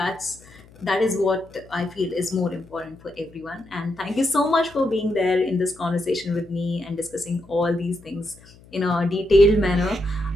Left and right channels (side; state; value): left; noise; hum, 24 dB below the sound